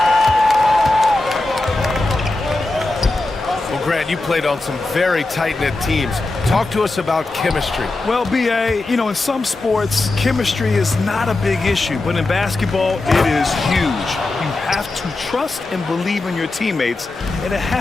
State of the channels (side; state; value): right; quieter; 3.0 dB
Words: Well, Grant, you played on some very tight-knit teams. Talk to us about chemistry. Well, B.A., you know, in some sports, chemistry is not a big issue, but in basketball, it is huge. You have to trust and believe in your teammates, and it